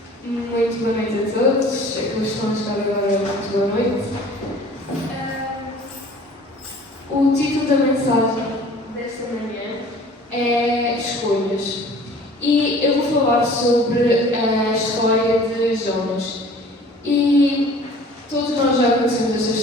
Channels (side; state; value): both; normal; correlation 0.48